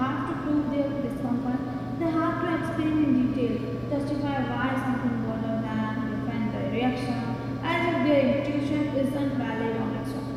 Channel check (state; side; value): identical; both; correlation 1.00